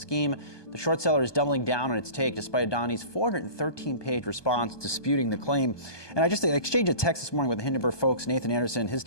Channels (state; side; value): late; right; 1.2 ms